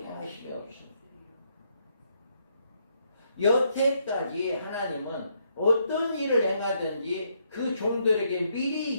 없습니다. 여태까지 하나님은 어떤 일을 행하든지 그 종들에게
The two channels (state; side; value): inverted; both; correlation -0.75